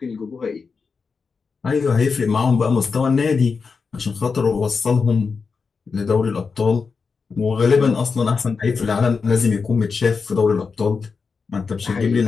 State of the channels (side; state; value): right; quieter; 5.1 dB